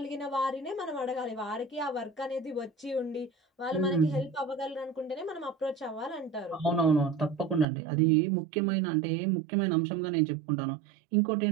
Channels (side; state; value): left; drops out; at 7.7 s